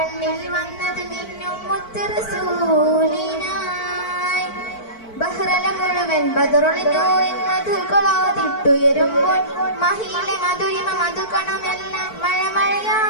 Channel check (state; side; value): late; right; 4.5 ms